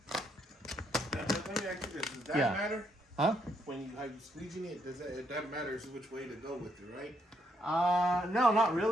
Let me ask you this: does that matter? Huh? When you how you squeeging it, it doesn't matter which way to go with it, right? No, not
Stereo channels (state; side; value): normal; both; correlation 0.74